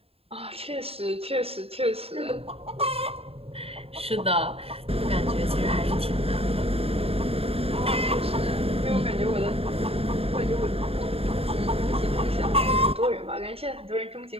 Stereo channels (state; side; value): late; left; 0.28 ms